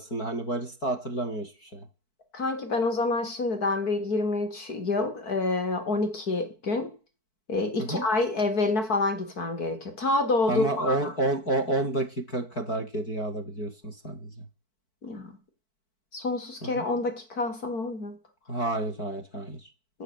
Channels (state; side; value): late; right; 4.6 ms